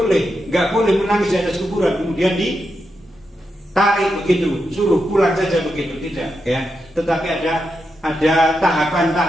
boleh menangis di atas kuburan kemudian tarik begitu, suruh pulang saja begitu, tidak, ya. Tetapi ada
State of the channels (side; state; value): both; normal; correlation 0.86